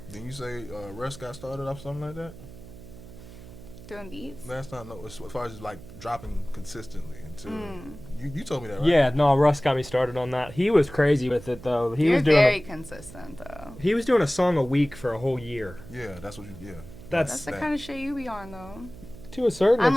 Didn't you say Russ got started off something like that? Doing beats? Last time, no, as far as like dropping consistently until you told me that, right? Yeah, no, Russ got me started on that. He was crazy with it though. You're very consistent though. He was doing a song a week for a whole year. Yeah, that's what you. Yeah, That's the that. kind of shit you be on though. To a certain I'm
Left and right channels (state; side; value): noise; right; hum, 16 dB below the sound